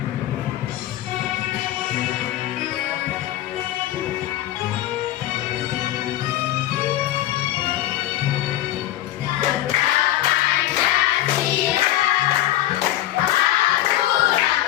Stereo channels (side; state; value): right; quieter; 14.3 dB